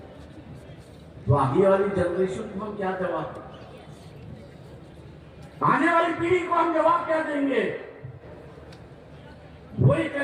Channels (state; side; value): identical; both; correlation 1.00